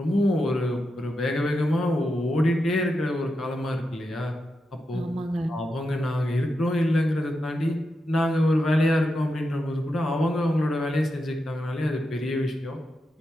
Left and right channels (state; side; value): normal; both; correlation 0.87